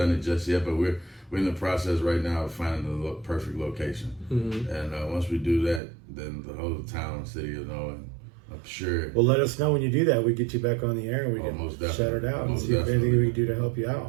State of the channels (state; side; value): drops out; left; at 5.8 s